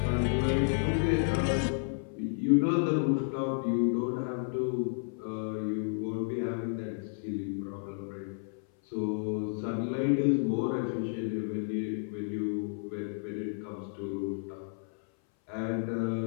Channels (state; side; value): silent; right; 57 dB below the other